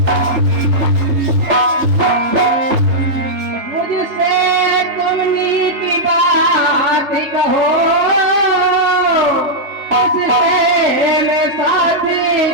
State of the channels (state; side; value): late; left; 3.7 ms